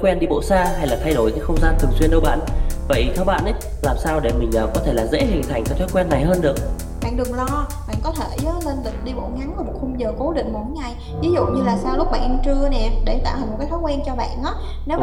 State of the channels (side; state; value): both; identical; correlation 1.00